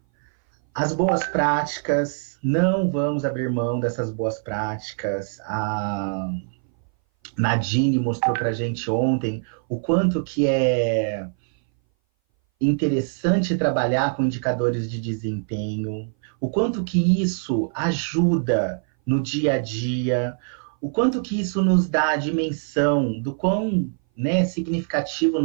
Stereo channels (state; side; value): silent; left; 59 dB below the other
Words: As boas práticas, não vamos abrir mão dessas boas práticas. A Nadine mostrou para a gente ontem o quanto que é interessante trabalhar com indicadores de desempenho, o quanto que isso ajuda no dia a dia, o quanto que isso nos dá a dimensão do quão, né, significativo